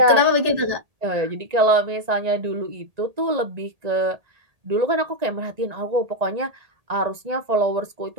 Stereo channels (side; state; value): left; late; 1.9 ms